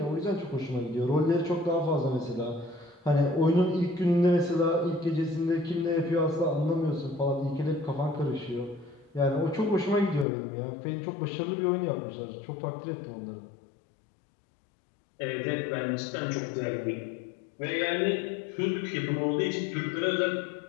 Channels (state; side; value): drops out; right; at 10.2 s